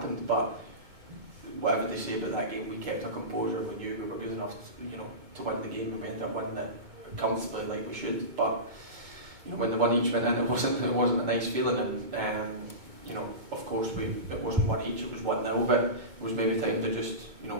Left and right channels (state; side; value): late; left; 2.2 ms